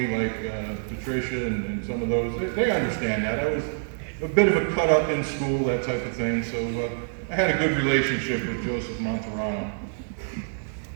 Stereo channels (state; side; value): silent; left; digital silence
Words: like Patricia and some of those, they understand that. I was a bit of a cut up in school, that type of thing, so I had a good relationship with Joseph Monterano.